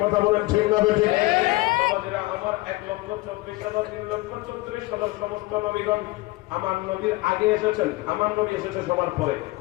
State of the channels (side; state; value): right; quieter; 20.6 dB